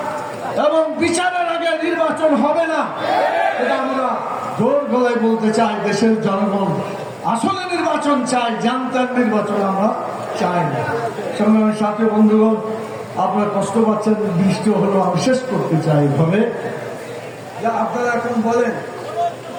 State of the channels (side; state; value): both; identical; correlation 1.00